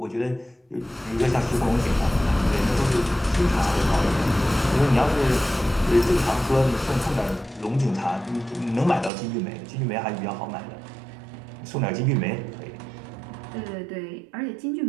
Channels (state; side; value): drops out; left; at 9.1 s